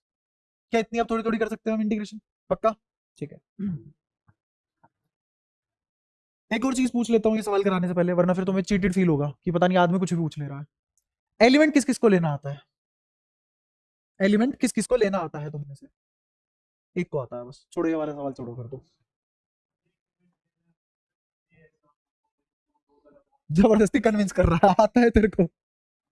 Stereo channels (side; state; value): both; identical; correlation 1.00